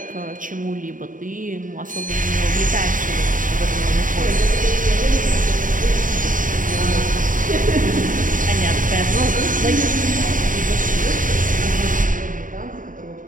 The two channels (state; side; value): late; left; 0.39 ms